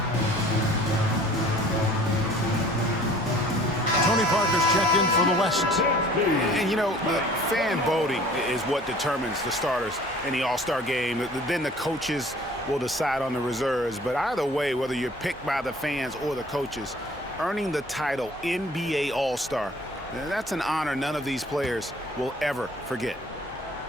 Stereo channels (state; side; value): normal; both; correlation 0.51